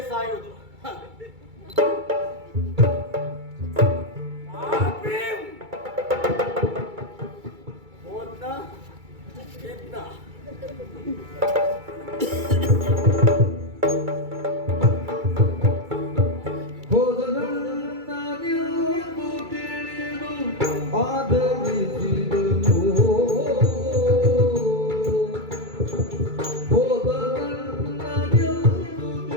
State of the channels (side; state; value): left; late; 2.3 ms